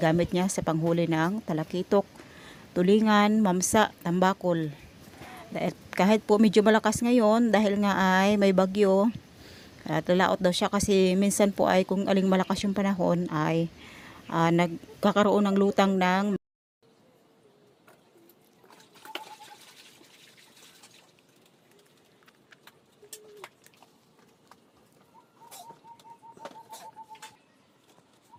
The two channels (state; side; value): identical; both; correlation 1.00